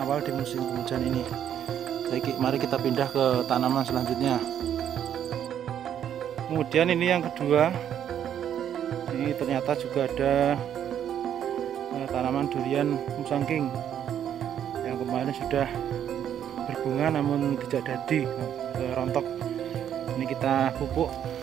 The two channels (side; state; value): left; quieter; 9.7 dB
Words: awal di musim penghujan ini. Jadi mari kita pindah ke tanaman selanjutnya. Kemudian ini yang kedua, ini ternyata juga ada tanaman durian musangking yang kemarin sudah berbunga namun tidak jadi, rontok. Ini kita pupuk